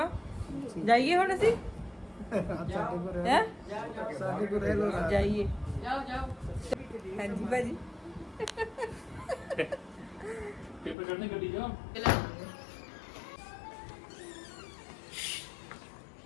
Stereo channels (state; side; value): drops out; right; at 11.0 s